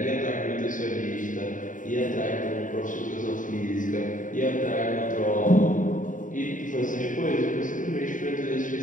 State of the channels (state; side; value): late; right; 0.38 ms